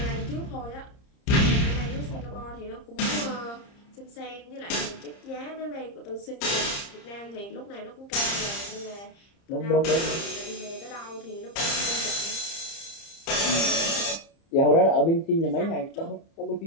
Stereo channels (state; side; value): late; right; 30 ms